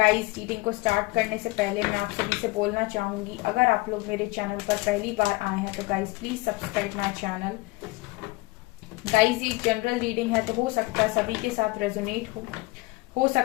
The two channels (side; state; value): right; quieter; 22.4 dB